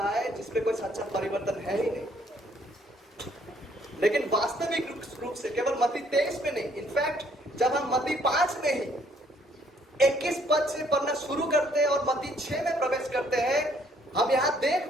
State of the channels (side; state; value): both; normal; correlation 0.65